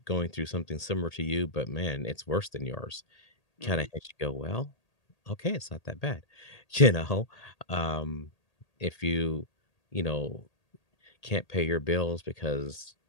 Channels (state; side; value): late; right; 1.8 ms